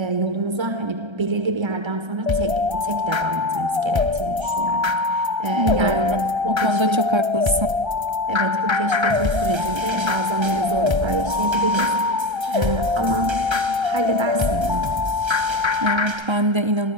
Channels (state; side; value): late; left; 1.3 ms